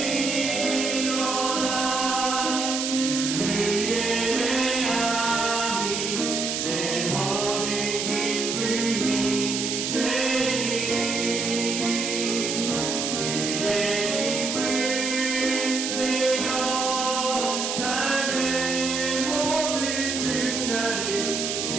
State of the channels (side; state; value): right; noise; hiss, 2 dB below the sound